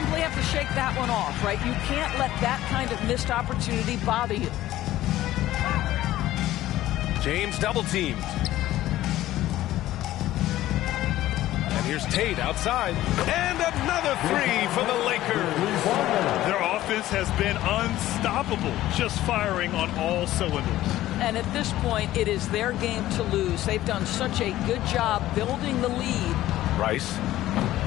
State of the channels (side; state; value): right; quieter; 14.8 dB